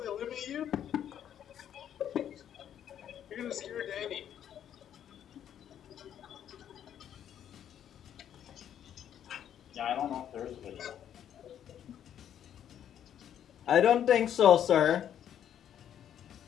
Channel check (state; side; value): quieter; right; 9.9 dB